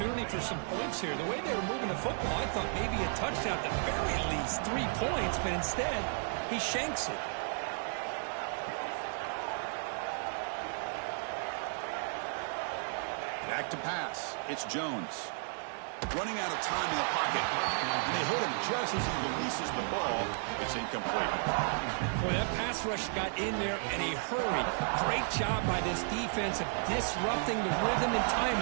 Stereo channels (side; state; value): left; silent; 55 dB below the other